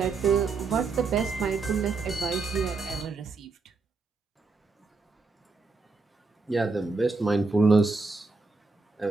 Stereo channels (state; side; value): quieter; left; 4.0 dB